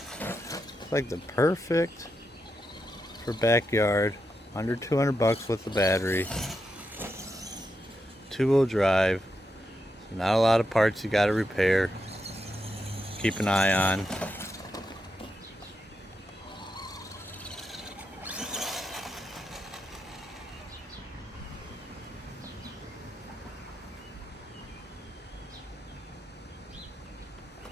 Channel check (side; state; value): both; normal; correlation 0.85